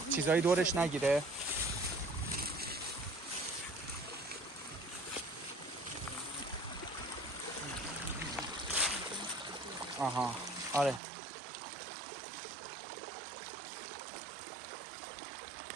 چیزایی دورش نگیره. آها آره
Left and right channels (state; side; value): drops out; left; at 11.0 s